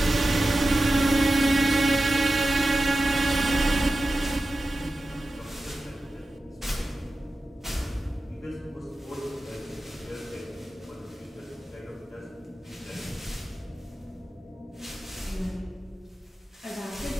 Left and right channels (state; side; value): normal; both; correlation 0.93